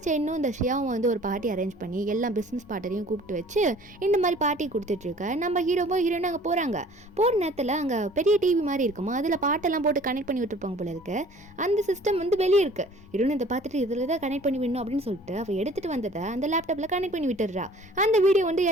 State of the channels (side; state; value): both; normal; correlation 0.51